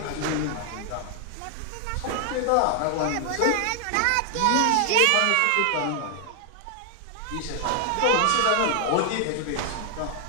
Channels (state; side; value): different; both; correlation 0.00